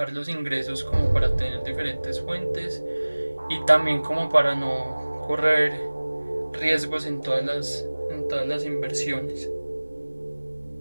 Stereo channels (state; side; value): inverted; both; correlation -1.00